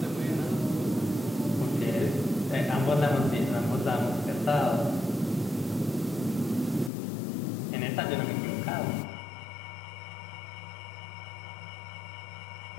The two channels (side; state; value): right; drops out; at 6.9 s